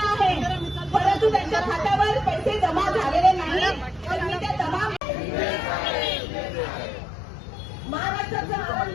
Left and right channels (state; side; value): drops out; right; at 5.0 s